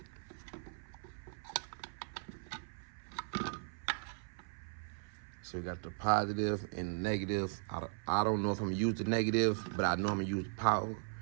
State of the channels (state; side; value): silent; left; 52 dB below the other